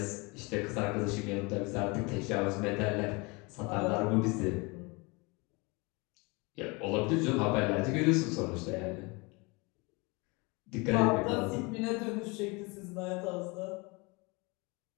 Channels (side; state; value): right; quieter; 27.5 dB